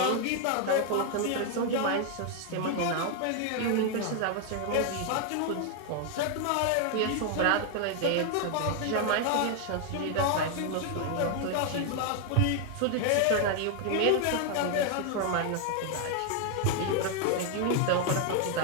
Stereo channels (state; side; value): different; both; correlation 0.00